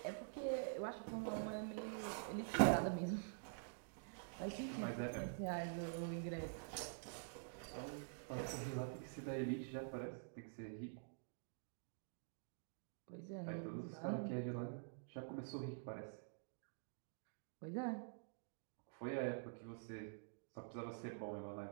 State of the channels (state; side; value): silent; left; digital silence